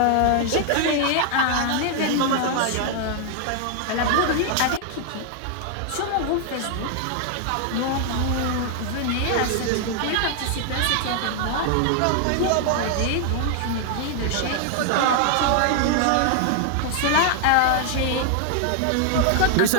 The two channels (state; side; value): different; both; correlation 0.00